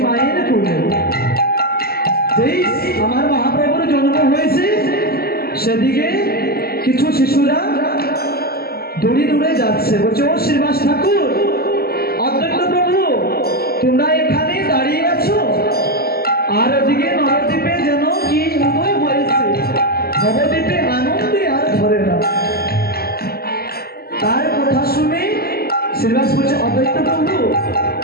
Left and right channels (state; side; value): late; right; 0.45 ms